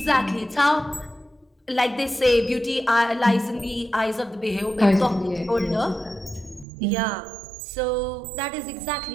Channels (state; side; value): drops out; left; at 6.7 s